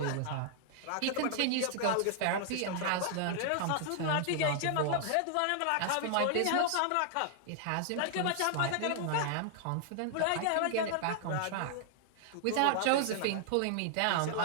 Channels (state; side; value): different; both; correlation 0.00